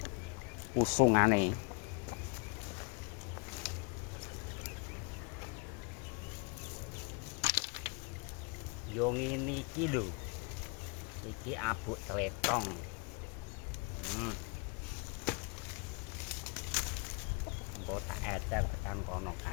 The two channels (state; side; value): quieter; right; 32.0 dB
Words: usungane. Yo ngene iki lho. Iki abuk tletong. Mbok tak ecer tekan kono